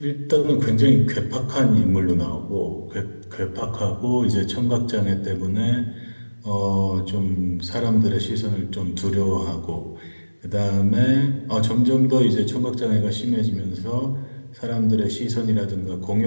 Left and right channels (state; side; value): inverted; both; correlation -1.00